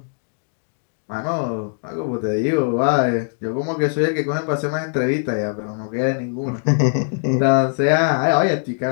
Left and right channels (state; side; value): silent; right; digital silence